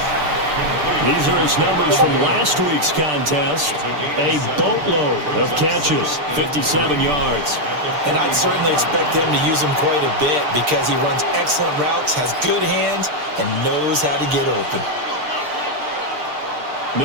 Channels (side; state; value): left; late; 6.7 ms